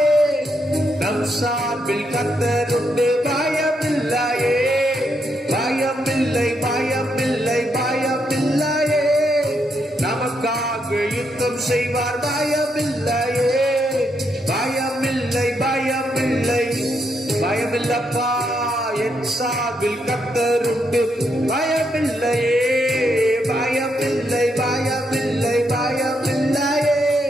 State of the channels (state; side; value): normal; both; correlation 0.79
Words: நம் சார்பில் கர்த்தர் உண்டு. பயமில்லையே பயமில்லை பயமில்லை பயமில்லையே, நமக்காக யுத்தம் செய்வார். பயமில்லையே பயமில்லை பயமில்லை பயமில்லப்பா, என் சார்பில் கர்த்தர் உண்டு. பயமில்லையே பயமில்லை பயமில்லை பயமில்லையே,